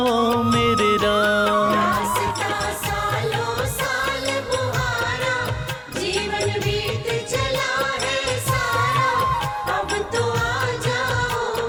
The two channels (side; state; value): both; identical; correlation 1.00